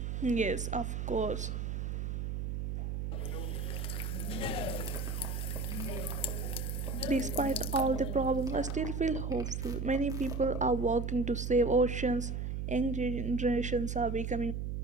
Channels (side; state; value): right; noise; hum, 2 dB below the sound